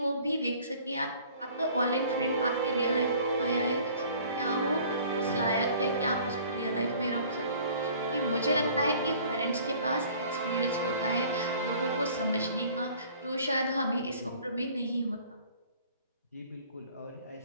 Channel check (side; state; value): both; inverted; correlation -0.52